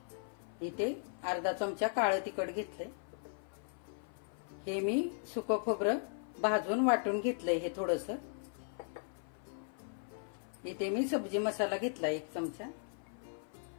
इथे अर्धा चमचा काळं तिखट घेतले। हे मी सुकं खोबरं भाजून वाटून घेतलंय हे थोडंसं। इथे मी सब्जी मसाला घेतला 1 चमचा,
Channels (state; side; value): silent; right; 53 dB below the other